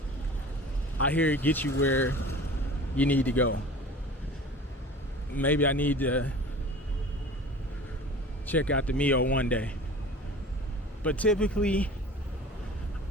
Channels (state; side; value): normal; both; correlation 0.41